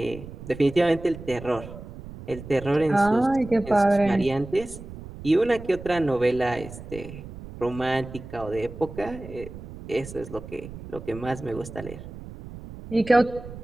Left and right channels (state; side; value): noise; right; rumble, 13 dB below the sound